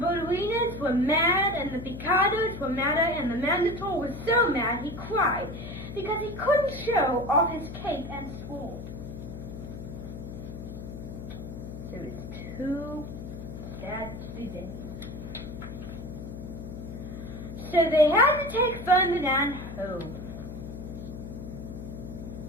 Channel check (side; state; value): left; noise; hum, 9 dB below the sound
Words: were mad, and the picados were madder, and the Mandatoor was so mad he cried, because he couldn't show off his cape and sword. So it's too sad to be there. So they had to take Ferdinand home.